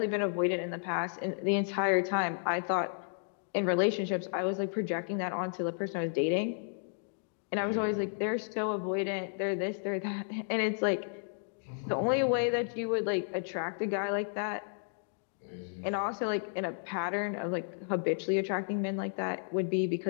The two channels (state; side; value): silent; right; digital silence